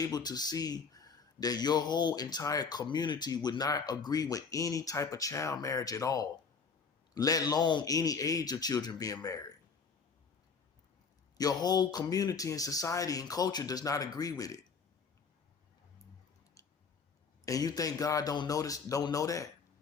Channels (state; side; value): quieter; right; 5.4 dB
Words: to see that your whole entire community would not agree with any type of child marriage at all, let alone any age of children being married? Your whole community and society and culture does not agree with it. And you think God don't know